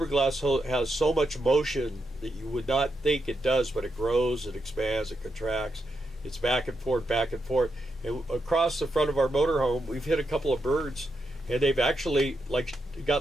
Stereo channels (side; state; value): both; normal; correlation 0.84